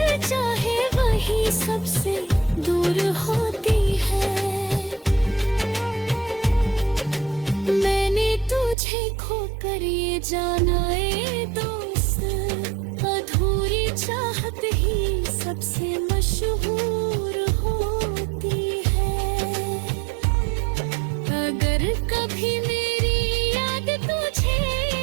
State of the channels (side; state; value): left; drops out; at 8.8 s